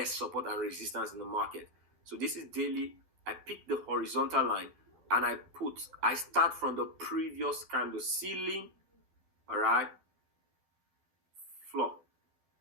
support and resistance in the market. So this is daily. I pick the horizontal line, and I start from the previous candle ceiling, all right? Floor.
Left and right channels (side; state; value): left; late; 12 ms